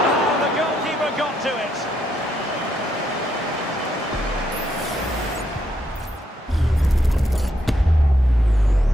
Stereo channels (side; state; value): both; normal; correlation 0.77